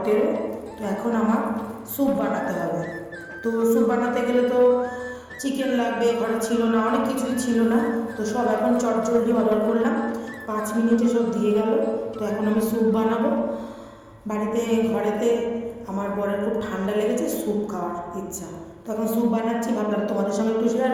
তো এখন আমার স্যুপ বানাতে হবে। তো স্যুপ বানাতে গেলে তো চিকেন লাগবে, ঘরে ছিল না, অনেক কিছুই ছিল না। তো সব এখন চটজলদি অর্ডার করলাম, 5 মিনিটে সব দিয়ে গেল। তো এখন আমি স্যুপ বানাবো বাড়িতে। ঘরেতে আমার বরের খুব ঠান্ডা লেগেছে, স্যুপ খাওয়ার ইচ্ছা। তো এখন স্যুপ বানাচ্ছি, ভাবলাম তোমাদের সঙ্গে একটু শেয়ার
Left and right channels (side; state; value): both; identical; correlation 1.00